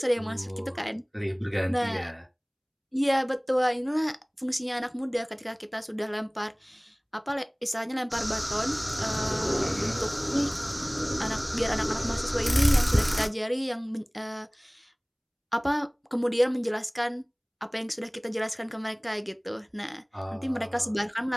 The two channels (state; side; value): identical; both; correlation 1.00